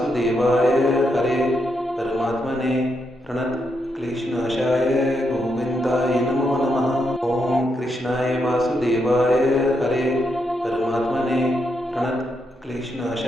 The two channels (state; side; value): normal; both; correlation 0.81